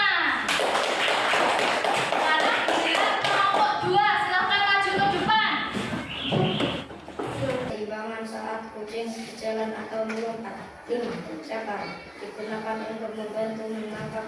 Sekarang giliran kelompok 2. Silakan maju ke depan. Keimbangan saat kucing berjalan atau melompat. 5. Cakar digunakan untuk membantu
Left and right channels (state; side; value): identical; both; correlation 1.00